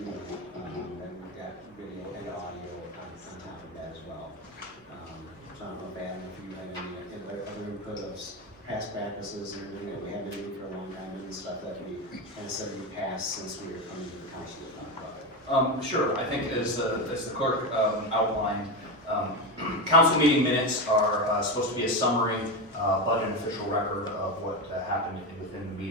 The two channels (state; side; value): normal; both; correlation 0.16